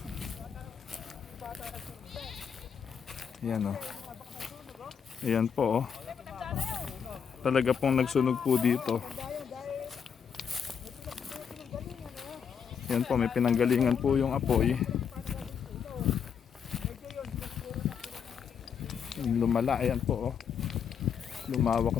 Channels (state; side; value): quieter; right; 7.2 dB